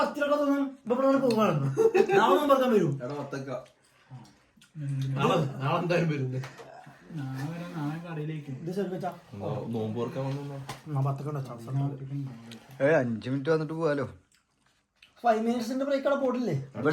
തോന്നും ഇവിടെ പോകാണ്. നാളെ പറയാൻ വരും. നാളെ എന്തായാലും വരുന്നത്. ഇത് ശ്രമിച്ചാ നോമ്പ് ഓർക്കാൻ വന്നോ? 5 മിനിറ്റ് വന്നിട്ട് പോവാലോ. 5 മിനിറ്റ്സിന്റെ ബ്രേക്ക് അവിടെ പോട്ടില്ലേ?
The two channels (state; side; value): identical; both; correlation 1.00